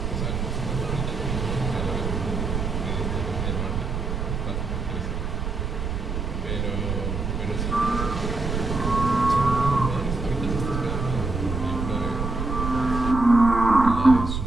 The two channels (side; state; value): right; noise; rumble, 3 dB below the sound